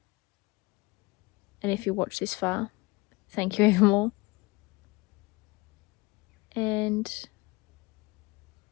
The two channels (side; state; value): right; quieter; 23.8 dB